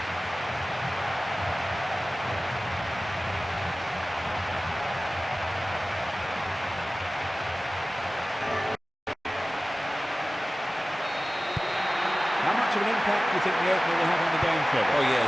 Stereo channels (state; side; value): normal; both; correlation 0.97